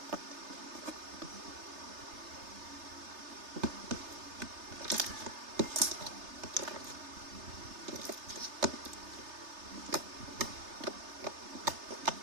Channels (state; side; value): late; left; 3.3 ms